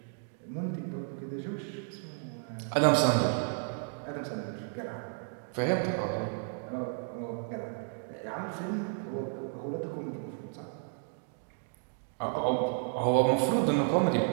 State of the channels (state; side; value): silent; left; 56 dB below the other